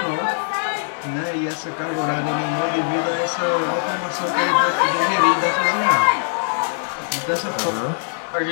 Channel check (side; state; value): right; silent; digital silence